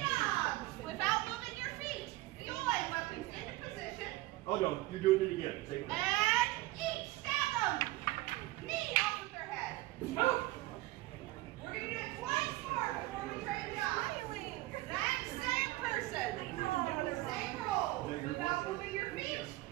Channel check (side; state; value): left; quieter; 18.7 dB